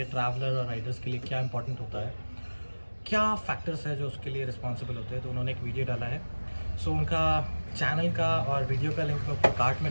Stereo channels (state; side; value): inverted; both; correlation -1.00